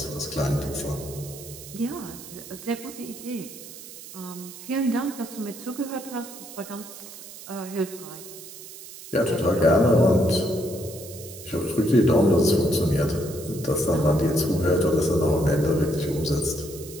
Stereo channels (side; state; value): right; noise; hiss, 15 dB below the sound